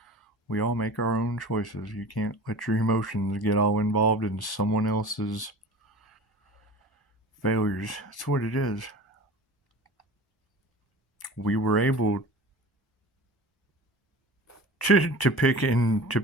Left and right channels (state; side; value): normal; both; correlation 0.37